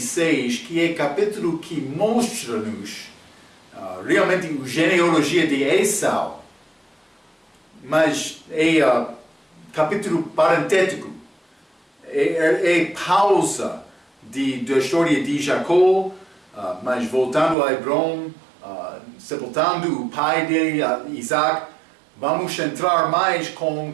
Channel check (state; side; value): drops out; left; at 17.6 s